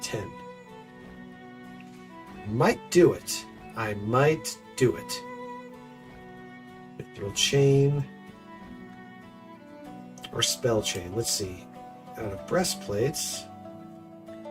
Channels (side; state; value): both; identical; correlation 1.00